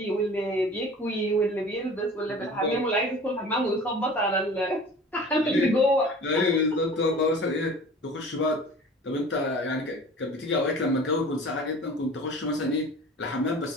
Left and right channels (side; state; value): both; normal; correlation 0.42